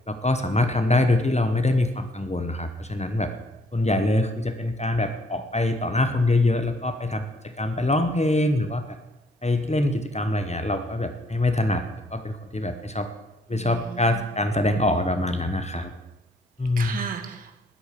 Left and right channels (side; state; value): both; normal; correlation 0.66